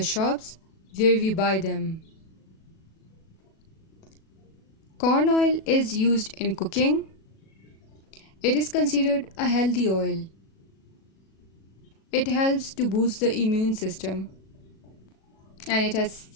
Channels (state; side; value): late; right; 37 ms